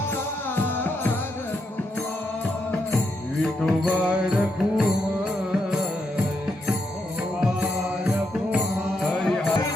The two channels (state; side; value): normal; both; correlation 0.81